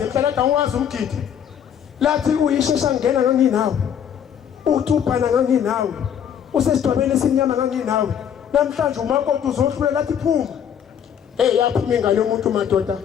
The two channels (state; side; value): quieter; right; 8.7 dB